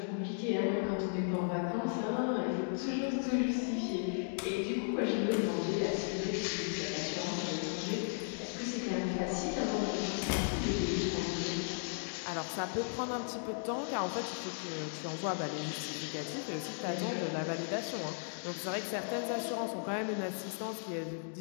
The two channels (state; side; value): silent; right; digital silence